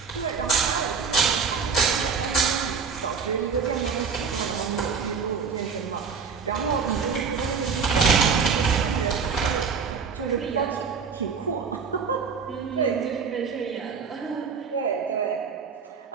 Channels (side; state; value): left; quieter; 5.9 dB